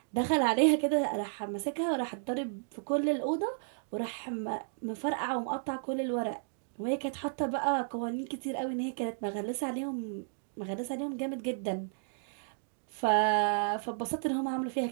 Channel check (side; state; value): left; silent; digital silence